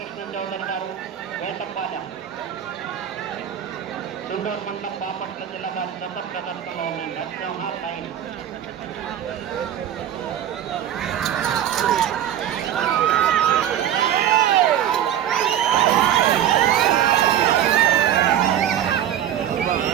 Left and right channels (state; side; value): quieter; left; 10.6 dB